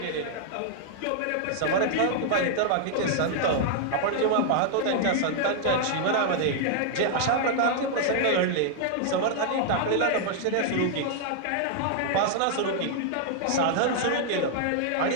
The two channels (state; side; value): different; both; correlation 0.00